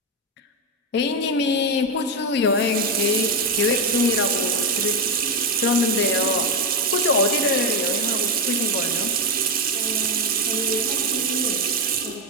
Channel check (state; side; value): normal; both; correlation 0.08